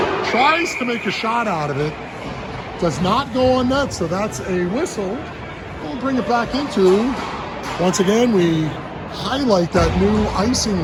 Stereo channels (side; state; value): both; identical; correlation 1.00